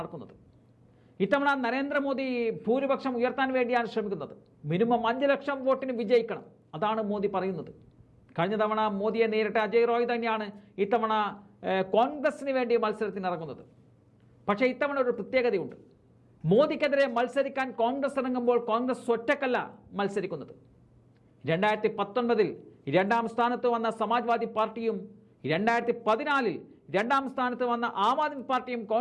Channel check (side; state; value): both; identical; correlation 1.00